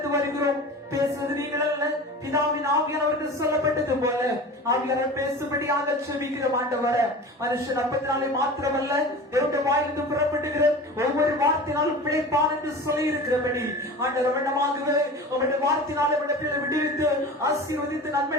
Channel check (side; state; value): both; normal; correlation 0.34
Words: வருகிறோம். பேசுவது நீங்கள் அல்ல, பிதாவின் ஆவியானவர்கள் சொல்லப்பட்டது போல ஆவியானவர் பேசும்படியாக செபிக்கிறோம் ஆண்டவரே. மனுஷன் அப்பத்தினாலே மாத்திரமல்ல என்னுடைய வாயிலிருந்து புறப்படுகிற ஒவ்வொரு வார்த்தையினாலும் பிழைப்பான் என்று சொல்லி இருக்கிறபடி ஆண்டவர் வண்ணமாகவே உங்களுடைய வார்த்தையினாலே விடுவித்து ஆசீர்வதித்து